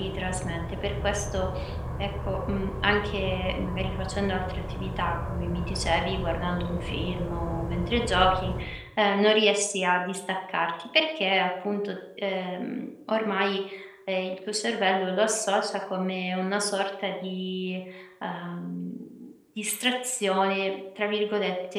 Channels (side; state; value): both; identical; correlation 1.00